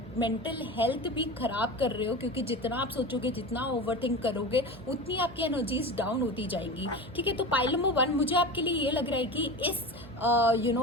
मेंटल हेल्थ भी खराब कर रहे हो, क्योंकि जितना आप सोचोगे, जितना ओवरथिंक करोगे, उतनी आपकी एनर्जीज डाउन होती जाएंगी। ठीक है, तो पाइल नंबर 1 मुझे आपके लिए ये लग रहा है कि इस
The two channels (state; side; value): noise; right; hum, 17 dB below the sound